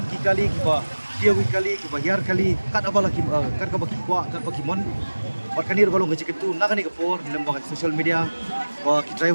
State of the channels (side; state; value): both; inverted; correlation -1.00